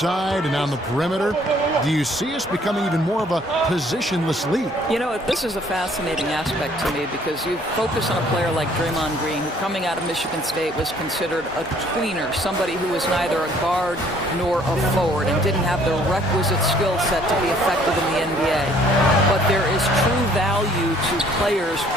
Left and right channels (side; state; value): both; normal; correlation 0.60